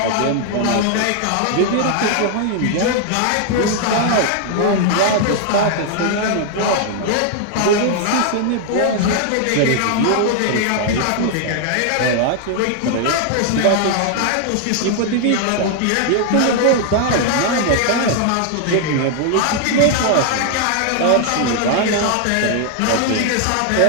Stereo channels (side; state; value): both; different; correlation 0.00